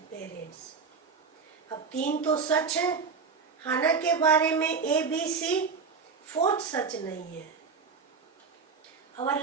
parents. अब 3 तो सच है हाना के बारे में, A, B, C. 4th सच नहीं है. Our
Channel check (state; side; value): quieter; left; 5.3 dB